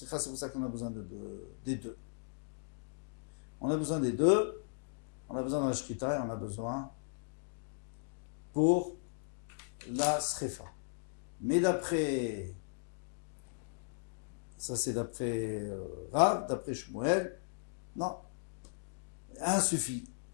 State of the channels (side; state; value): right; silent; digital silence